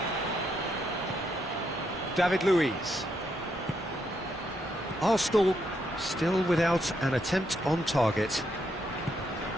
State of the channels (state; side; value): normal; both; correlation 0.78